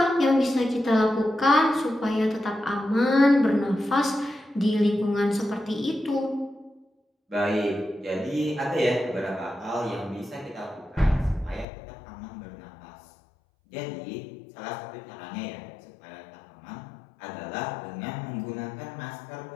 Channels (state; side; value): drops out; right; at 11.7 s